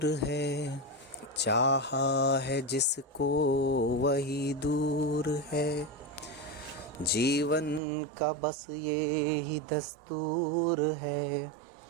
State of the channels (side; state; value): left; drops out; at 7.8 s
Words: है, चाहा है जिसको वही दूर है। जीवन का बस ये ही दस्तूर है,